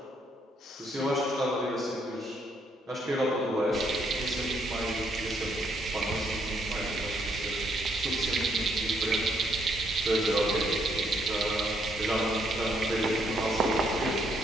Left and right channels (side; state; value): both; normal; correlation 0.72